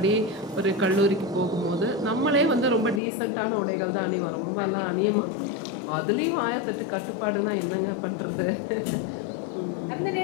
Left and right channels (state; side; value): drops out; right; at 3.0 s